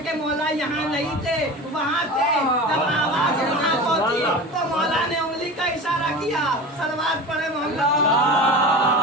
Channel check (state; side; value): normal; both; correlation 0.32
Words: मौला यहाँ नहीं थे, वहाँ थे। जब आवाज वहाँ पहुंची तो मौला ने उंगली का इशारा किया। सलवात पढ़े मोहम्मद